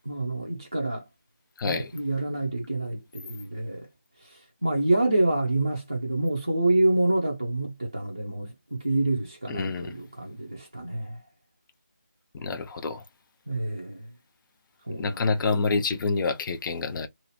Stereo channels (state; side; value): inverted; both; correlation -0.86